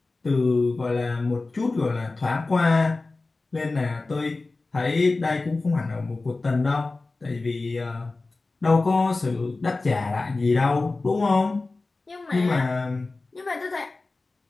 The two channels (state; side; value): quieter; right; 3.4 dB